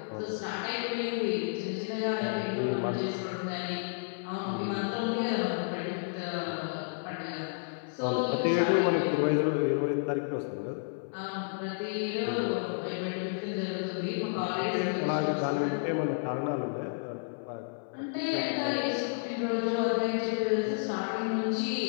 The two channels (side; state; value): right; silent; 57 dB below the other